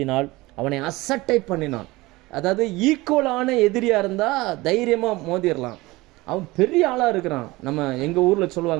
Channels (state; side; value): quieter; left; 20.8 dB